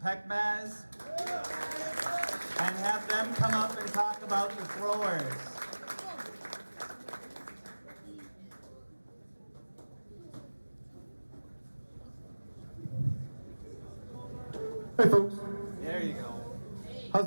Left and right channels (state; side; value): inverted; both; correlation -1.00